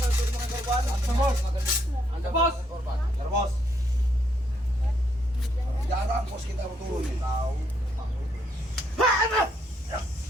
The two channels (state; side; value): normal; both; correlation 0.73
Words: Bos. Bos. Jarang bos kita turun nih. Tahu.